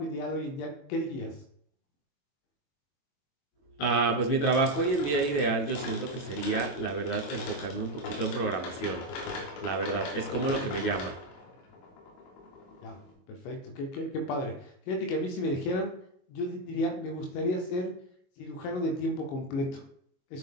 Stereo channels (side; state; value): right; late; 22 ms